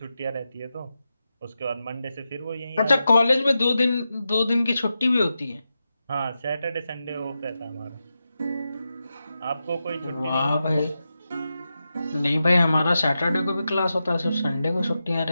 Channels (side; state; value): both; inverted; correlation -0.90